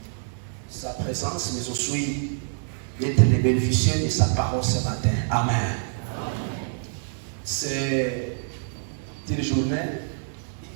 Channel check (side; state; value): left; silent; digital silence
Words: sa présence, mais aussi d'être les bénéficiaires de sa parole ce matin. Amen. C'est une journée